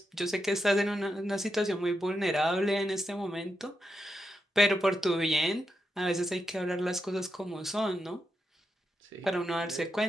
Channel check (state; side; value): normal; both; correlation 0.85